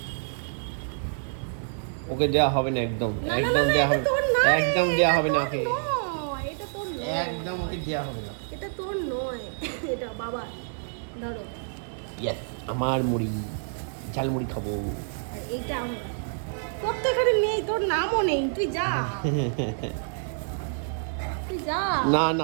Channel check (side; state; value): left; silent; digital silence